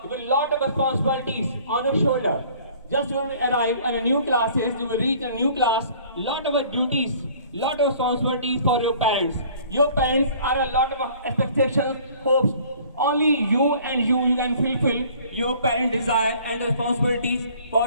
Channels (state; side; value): inverted; both; correlation -0.53